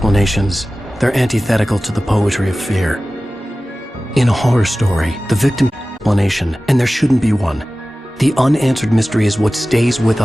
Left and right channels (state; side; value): normal; both; correlation 0.96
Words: They're antithetical to the poetry of fear. In a horror story, the victim explanation, and there shouldn't be one. The unanswered mystery is what stays with